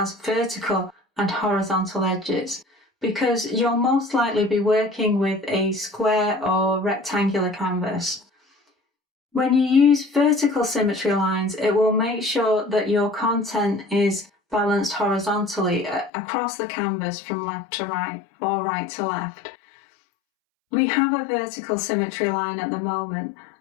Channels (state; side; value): drops out; right; at 16.1 s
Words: vertical and horizontal edges, because you'll most likely be working with a square or rectangular canvas. When you use vertical symmetry lines, it will make sure that your content is balanced horizontally across the canvas from left to right or right to left. We have a vertical symmetry line at the moment,